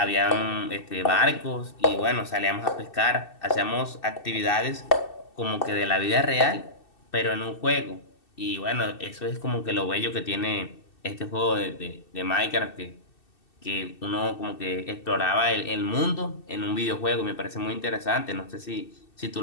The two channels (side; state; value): right; late; 2.6 ms